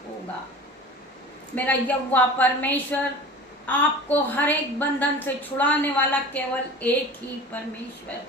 होगा। मेरा यहोवा परमेश्वर आपको हर एक बंधन से छुड़ाने वाला केवल एक ही परमेश्वर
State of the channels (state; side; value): normal; both; correlation 0.38